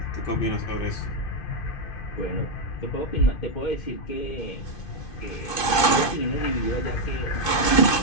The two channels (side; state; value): right; late; 2.5 ms